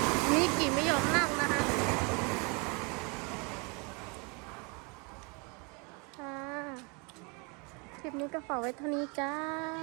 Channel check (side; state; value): left; quieter; 31.4 dB